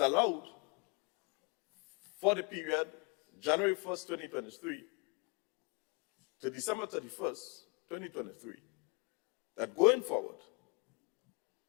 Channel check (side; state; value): right; quieter; 31.1 dB